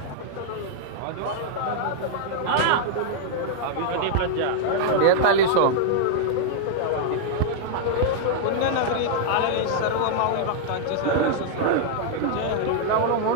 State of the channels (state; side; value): different; both; correlation -0.01